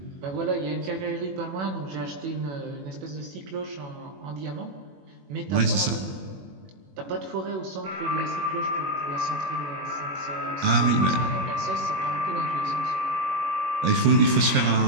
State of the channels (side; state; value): left; late; 21 ms